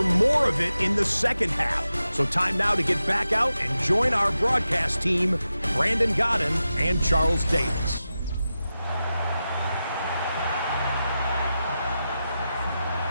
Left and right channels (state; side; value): inverted; both; correlation -0.91